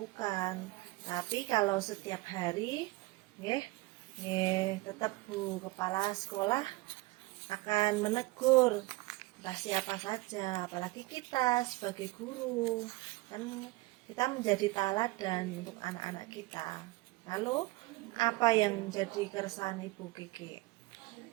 Tapi kalau setiap hari, nggih, tetap Bu Kepala Sekolah akan menegur entah siapa saja, apalagi kita sebagai guru, kan kita menjadi teladan untuk anak-anak kita. Lalu apa yang jadi keresahan Ibu Kiki?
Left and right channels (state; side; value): quieter; left; 21.5 dB